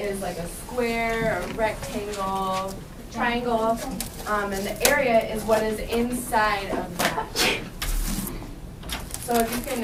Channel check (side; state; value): both; identical; correlation 1.00